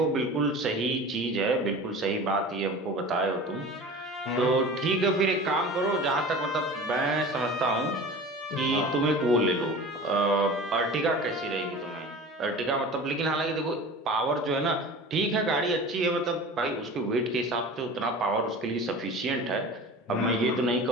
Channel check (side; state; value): both; normal; correlation 0.37